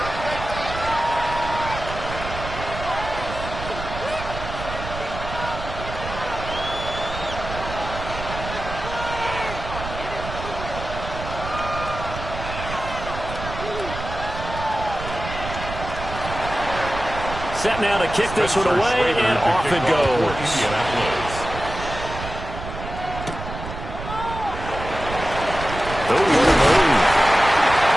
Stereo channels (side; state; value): right; noise; rumble, 9 dB below the sound